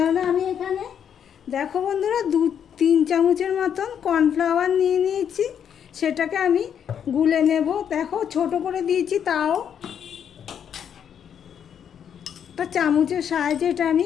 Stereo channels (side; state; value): right; quieter; 8.4 dB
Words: আমি এখানে দেখো বন্ধুরা 2-3 চামচের মতন কর্নফ্লাওয়ার নিয়ে নিয়েছি, সেটাকে আমি গুলে নেব। দেখো ছোট করে দিয়েছি, তাও একটা চামচের সাহায্যে এটা আমি